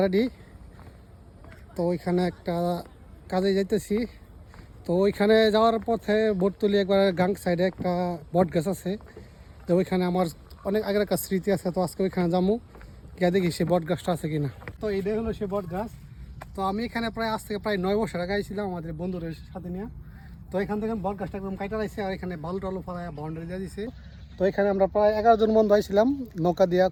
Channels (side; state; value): both; identical; correlation 1.00